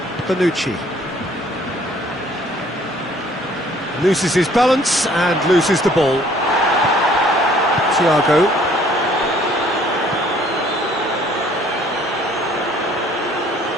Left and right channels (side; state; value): both; normal; correlation 0.58